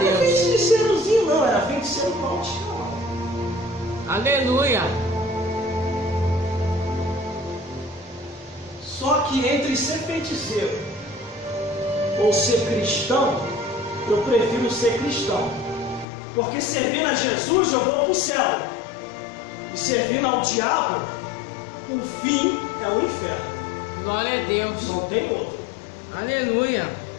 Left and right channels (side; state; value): right; drops out; at 16.1 s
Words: era Deus. feiticeirozinho, não, era feiticeiro profissional. Aleluia. Só que entre ser feiticeiro ou ser cristão, eu prefiro ser cristão. Porque servindo a Jesus eu vou para o céu. E servindo ao diabo, o fim é o inferno. Glória a Deus. Não tem outro. Aleluia.